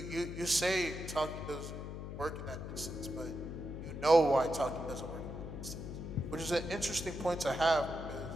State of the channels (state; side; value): noise; left; hum, 7 dB below the sound